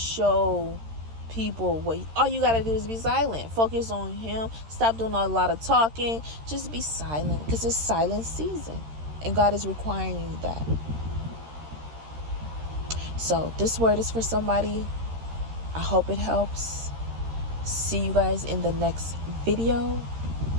people all you got to do is be silent. Focus on Him. Stop doing a lot of talking. Just be silent, because it's silent season and God is requiring that. So this word is for somebody. I hope it helps. See you guys in the next video,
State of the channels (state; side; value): late; left; 13 ms